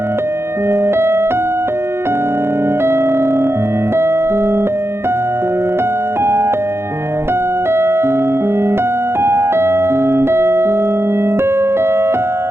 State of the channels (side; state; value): left; late; 0.12 ms